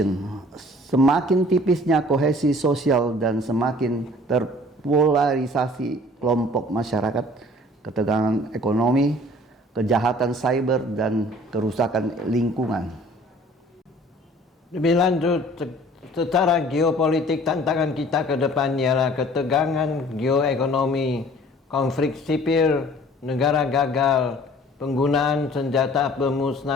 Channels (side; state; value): both; normal; correlation 0.51